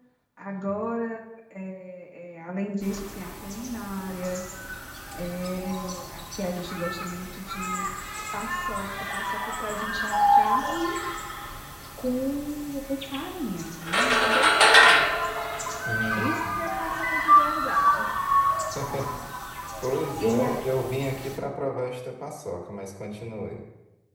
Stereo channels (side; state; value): both; identical; correlation 1.00